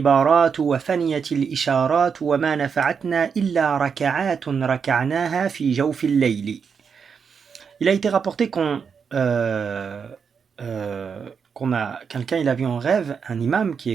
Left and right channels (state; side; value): quieter; left; 6.3 dB